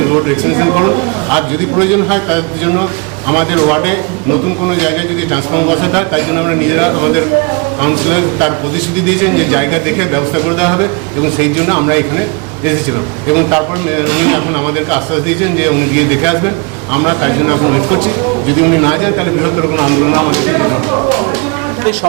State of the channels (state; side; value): quieter; left; 31.0 dB